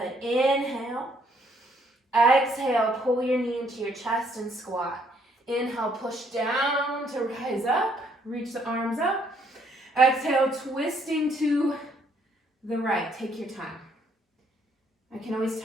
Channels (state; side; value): normal; both; correlation 0.68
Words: inhale. Exhale, pull your knee into your chest and squat. Inhale, push down to rise up, reach the arms up. Exhale, twisting to the right, take your time. I can always